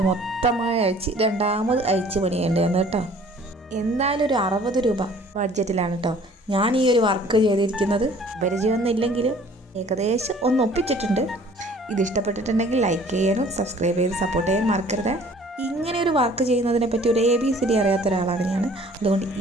മൊത്തമായി അയച്ച് രണ്ടാമത് അയച്ച് പണിയേണ്ടി വന്നു കേട്ടോ. എന്തായാലും ഒരു 60 രൂപ ബഡ്ജറ്റിലാണ് കേട്ടോ ഞാൻ ഈ ഒരു വർക്ക് ചെയ്തിരിക്കുന്നത്. പരിചയമൊന്നും ഇല്ലെങ്കിലും ഏകദേശം ഒന്ന് ഒപ്പിച്ചിട്ടുണ്ട്. ഇത് ഇഷ്ടപ്പെട്ടിട്ടുണ്ടെങ്കിൽ ലൈക്ക് ചെയ്യാനും സബ്സ്ക്രൈബ് ചെയ്ത് സപ്പോർട്ട് ചെയ്യാൻ മറക്കരുത്. ഇങ്ങനെ ഒരു വർക്ക് ചെയ്യുന്നതിനെ പറ്റി ഒരു ABCD അറിയാത്ത ഒരാളാണ് ഞാൻ. അതുകൊണ്ട്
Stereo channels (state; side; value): normal; both; correlation 0.53